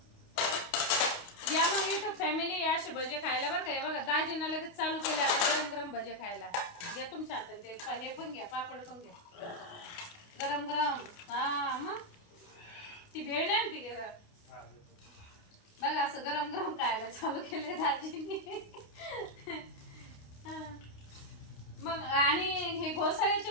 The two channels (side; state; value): right; late; 29 ms